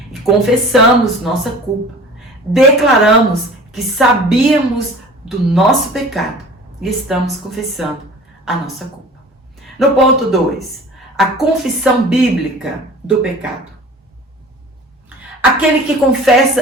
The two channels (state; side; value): normal; both; correlation 0.43